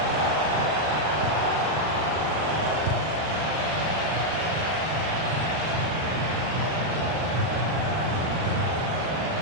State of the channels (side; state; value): left; late; 39 ms